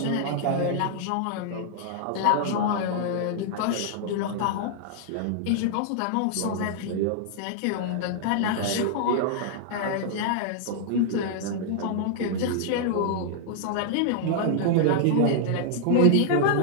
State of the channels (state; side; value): different; both; correlation -0.01